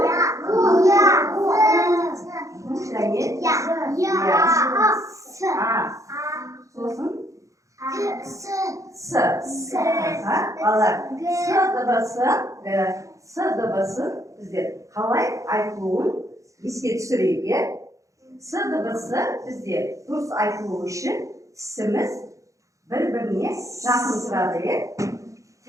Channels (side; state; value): left; late; 0.15 ms